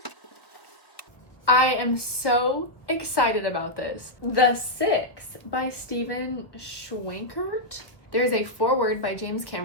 I am so excited about this. The Six by Stephen Schwenkert. There's a foreword by James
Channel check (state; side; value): late; right; 1.1 ms